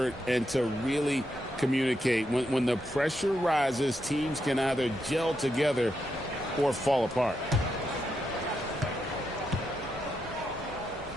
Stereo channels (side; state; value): both; normal; correlation 0.83